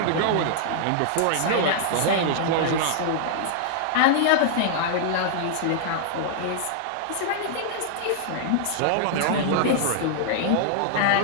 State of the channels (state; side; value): different; both; correlation -0.01